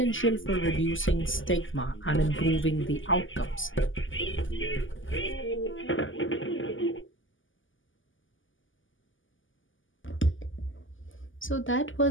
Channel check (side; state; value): right; late; 0.57 ms